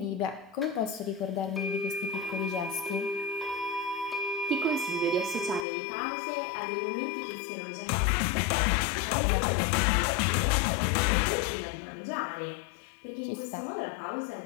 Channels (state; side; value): drops out; right; at 5.7 s